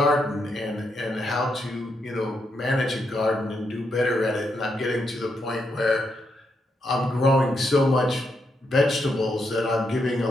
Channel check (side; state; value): both; normal; correlation 0.81